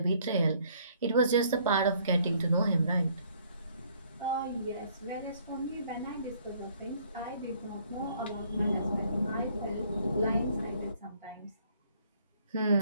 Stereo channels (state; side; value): inverted; both; correlation -0.62